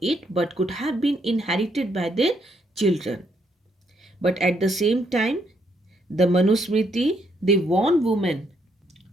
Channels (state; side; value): normal; both; correlation 0.73